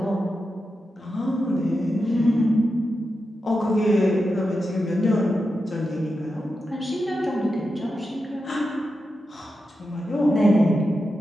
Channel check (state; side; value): normal; both; correlation 0.89